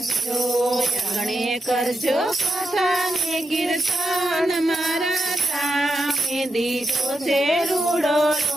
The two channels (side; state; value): both; normal; correlation 0.86